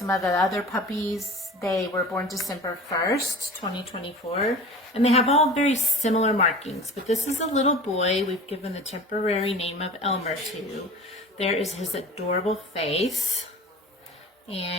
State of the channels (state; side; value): normal; both; correlation 0.38